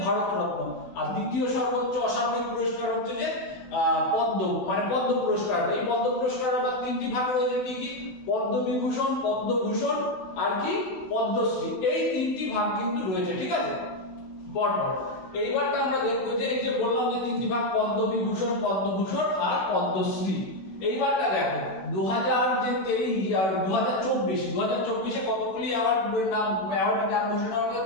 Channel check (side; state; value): right; late; 16 ms